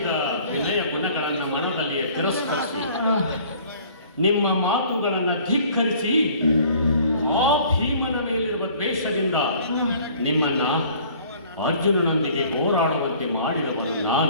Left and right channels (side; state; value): both; inverted; correlation -0.53